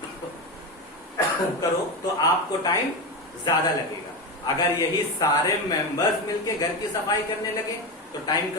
करो तो आपको टाइम ज्यादा लगेगा। अगर यही सारे मेंबर्स मिलके घर की सफाई करने लगे तो टाइम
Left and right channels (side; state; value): both; normal; correlation 0.17